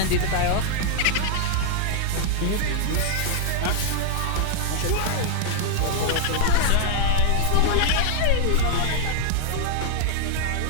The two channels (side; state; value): both; different; correlation -0.01